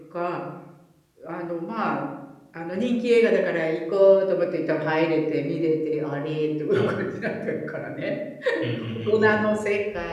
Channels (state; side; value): identical; both; correlation 1.00